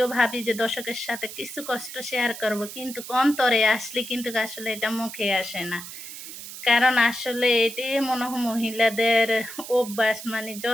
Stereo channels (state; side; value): noise; right; hiss, 11 dB below the sound